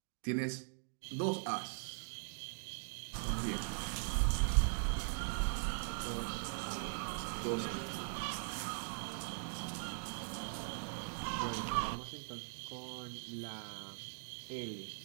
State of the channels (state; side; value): silent; left; digital silence